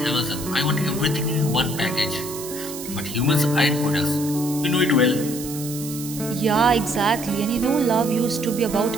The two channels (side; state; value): right; noise; hiss, 11 dB below the sound